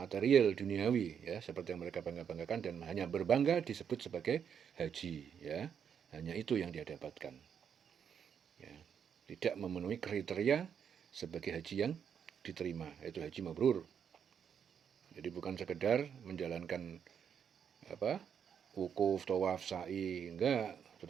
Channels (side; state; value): left; quieter; 7.8 dB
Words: duniawi, ya, seperti yang mereka bangga-banggakan, dan hanya berbangga disebut sebagai haji, ya. Hanya itu yang dia dapatkan. Ya, tidak memenuhi kriteria sebagai haji yang diterima, yaitu haji mabrur. Jadi bukan sekedar menjalankan wukuf, tawaf, sa'i, enggak,